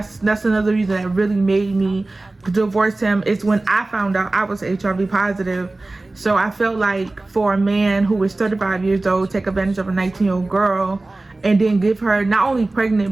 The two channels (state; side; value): quieter; left; 3.0 dB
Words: another reason that really made me divorce him, is when I found out I was HIV positive. So I felt like for a man who was 35 years old take advantage of a 19-year-old girl and then give her not only